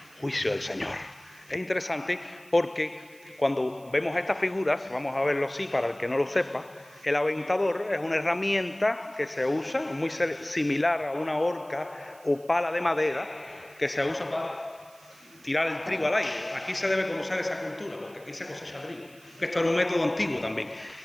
juicio del Señor. Es interesante porque cuando vemos estas figuras, vamos a verlo así para el que no lo sepa, el aventador es una herramienta que se usa, muy similar a una horca o pala de madera, que se usa para tirar el trigo al aire. Aquí se debe conocer esa cultura, porque aquí se cosecha trigo. Esto era un método antiguo también,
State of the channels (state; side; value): noise; right; hiss, 25 dB below the sound